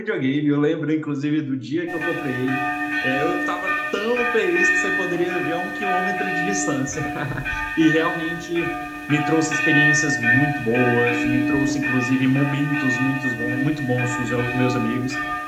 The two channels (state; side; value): identical; both; correlation 1.00